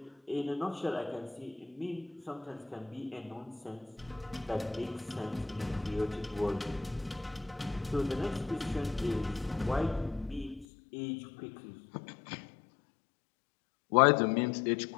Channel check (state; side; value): drops out; right; at 10.7 s